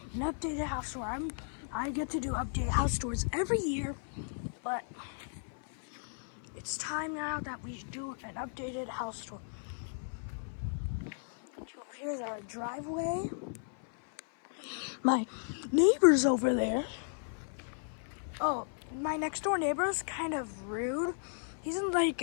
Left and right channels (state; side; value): silent; right; 55 dB below the other